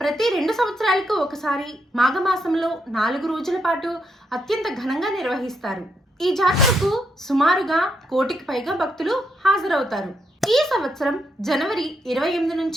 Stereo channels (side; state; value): both; normal; correlation 0.79